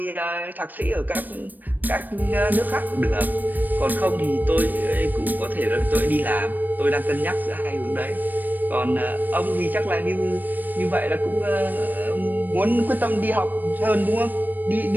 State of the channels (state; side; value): late; left; 0.088 ms